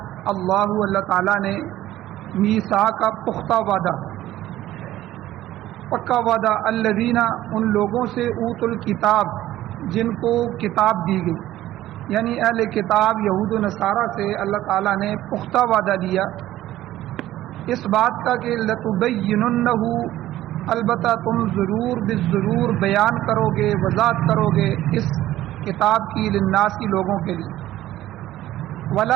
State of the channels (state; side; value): quieter; left; 14.4 dB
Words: اللہ تعالیٰ نے میثاق کا پختہ وعدہ، پکا وعدہ، الذین، ان لوگوں سے، اوت الکتاب، جن کو کتاب دی گئی، یعنی اہل کتاب یہود و نصارہ سے اللہ تعالیٰ نے پختہ وعدہ دیا اس بات کا کہ لتبیننہ، البتہ تم ضرور بالضرور بیان کرو گے، وضاحت کرو گے اس کتاب کی، للناس کی، لوگوں کے لیے،